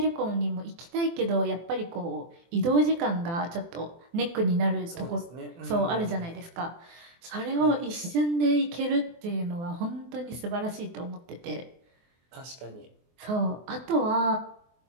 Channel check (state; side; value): late; left; 24 ms